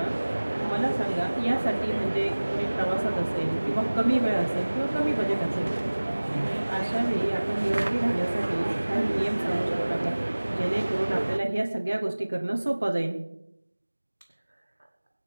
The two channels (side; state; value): both; inverted; correlation -1.00